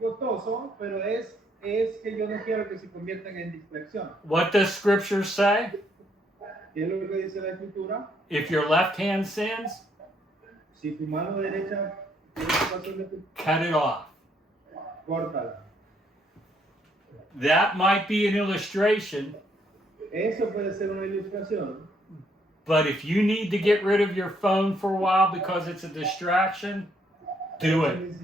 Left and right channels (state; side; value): normal; both; correlation 0.71